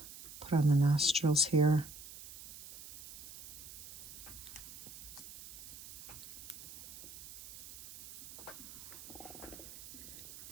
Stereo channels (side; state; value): right; noise; hiss, 13 dB below the sound